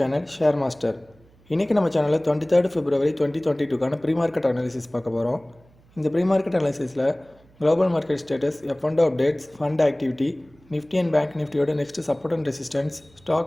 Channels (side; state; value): right; noise; hum, 29 dB below the sound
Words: Share Master. இன்னைக்கு நம்ம சேனலில் 23 February 2022 pre-market analysis பார்க்க போகிறோம். இந்த pre-market analysisல global market status, F&O updates, fund activity, Nifty and Bank Niftyயோட next support and resistance,